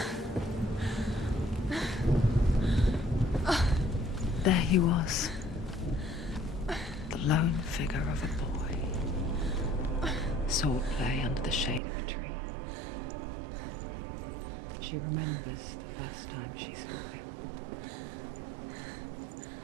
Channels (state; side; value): drops out; left; at 11.8 s